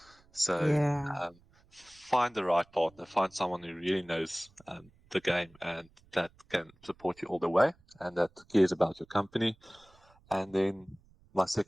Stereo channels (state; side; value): noise; right; rumble, 30 dB below the sound